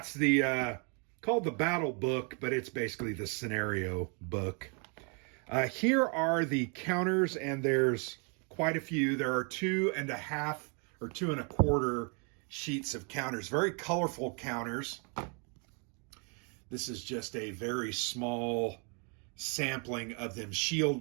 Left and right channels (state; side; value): quieter; left; 36.6 dB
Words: the called the battle book, but it's basically the scenario book. Here are the counters, and there's quite a few. There are 2.5 or 2.25 sheets of counters, very colorful counters. This is just a very small sampling of them.